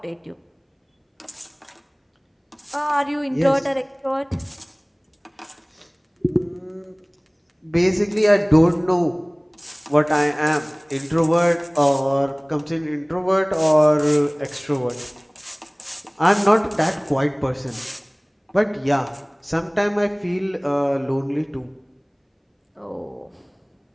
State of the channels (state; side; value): identical; both; correlation 1.00